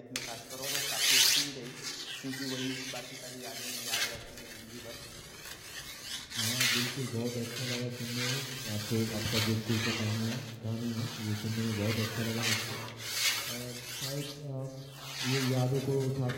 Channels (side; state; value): both; identical; correlation 1.00